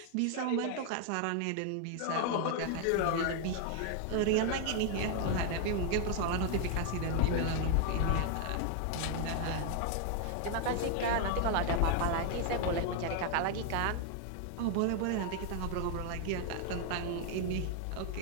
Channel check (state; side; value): different; both; correlation 0.00